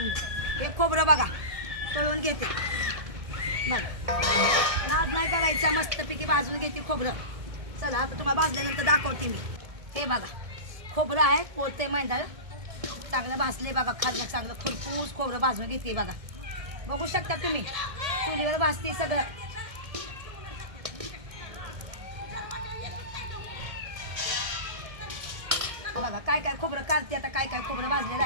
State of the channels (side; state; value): left; late; 1.6 ms